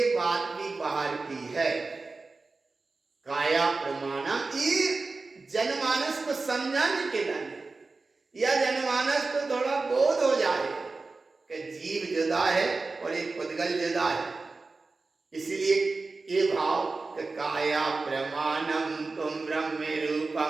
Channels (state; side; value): quieter; left; 3.8 dB